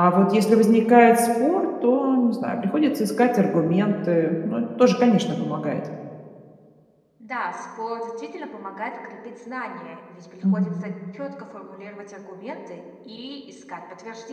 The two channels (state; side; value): identical; both; correlation 1.00